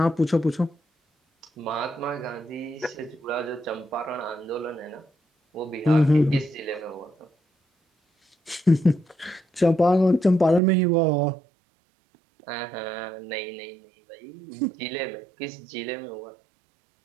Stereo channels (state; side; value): drops out; left; at 10.6 s